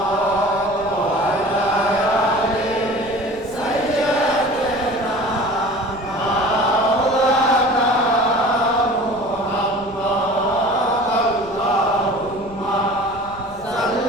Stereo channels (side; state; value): left; noise; rumble, 20 dB below the sound